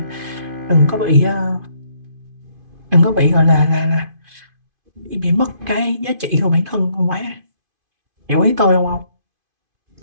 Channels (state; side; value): late; left; 2.5 ms